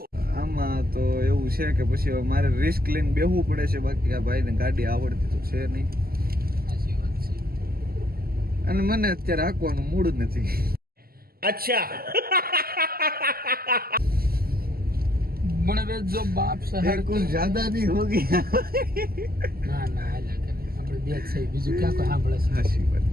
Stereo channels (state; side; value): late; left; 0.44 ms